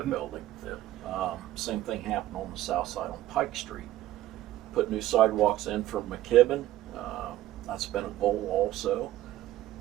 Yeah. Same thing happened on the south side on Pike Street. Put new sidewalks in from McKibben. That's been a goal also.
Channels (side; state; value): left; quieter; 14.6 dB